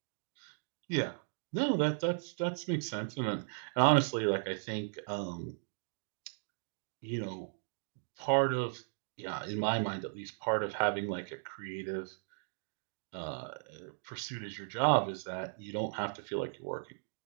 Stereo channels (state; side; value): silent; left; digital silence